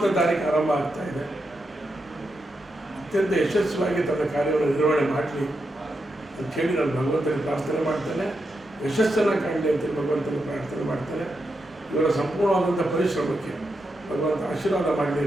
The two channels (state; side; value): normal; both; correlation 0.85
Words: ತಾರೀಕು ಆರಂಭ ಆಗ್ತಾ ಇದೆ. ಅತ್ಯಂತ ಯಶಸ್ವಿಯಾಗಿ ತನ್ನ ಕಾರ್ಯವನ್ನು ನಿರ್ವಹಣೆ ಮಾಡಲಿ ಅಂತ ಹೇಳಿ ನಾನು ಭಗವಂತನಿಗೆ ಪ್ರಾರ್ಥನೆ ಮಾಡ್ತೇನೆ. ಯಶಸ್ಸನ್ನು ಕಾಣಲಿ ಅಂತೇಳಿ ಭಗವಂತನಿಗೆ ಪ್ರಾರ್ಥನೆ ಮಾಡ್ತೇನೆ. ಇವರ ಸಂಪೂರ್ಣವಾದಂಥ ಪರಿಶ್ರಮಕ್ಕೆ ಭಗವಂತ ಆಶೀರ್ವಾದ ಮಾಡಲಿ